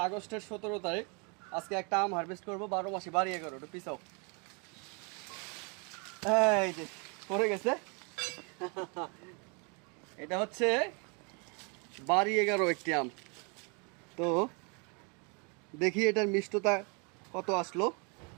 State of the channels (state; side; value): quieter; left; 34.2 dB